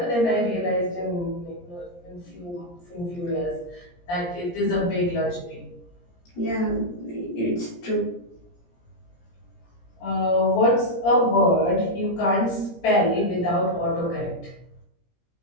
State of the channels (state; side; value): late; right; 17 ms